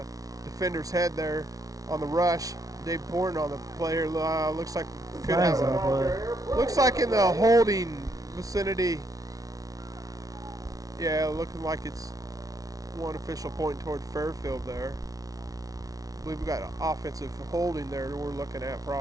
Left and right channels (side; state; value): left; late; 0.18 ms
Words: defender's head there on the rush. Dave Pohren on the player looks like could Flags have on the play. looks like in the holding vicinity. Yeah, looking like it's one official pointing toward Fairfield there. I believe we got offensive holding there that we're looking at